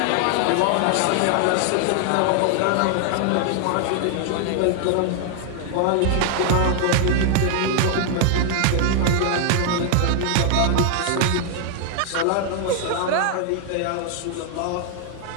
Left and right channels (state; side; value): different; both; correlation 0.00